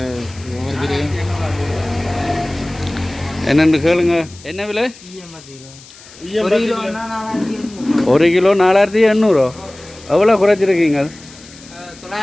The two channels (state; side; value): noise; left; hiss, 21 dB below the sound